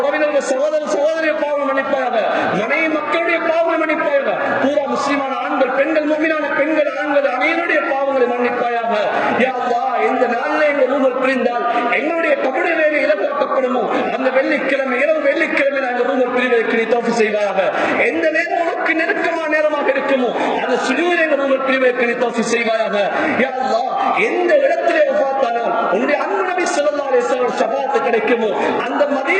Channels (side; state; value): both; identical; correlation 1.00